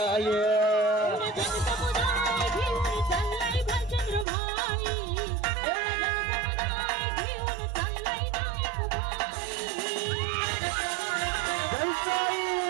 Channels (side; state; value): left; drops out; at 4.2 s